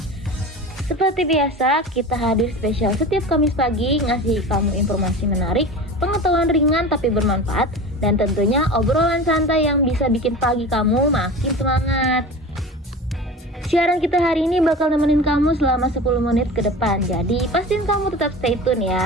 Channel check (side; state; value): both; normal; correlation 0.33